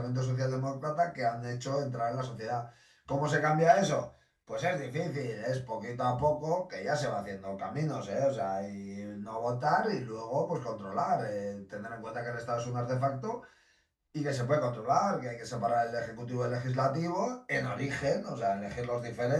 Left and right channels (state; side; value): identical; both; correlation 1.00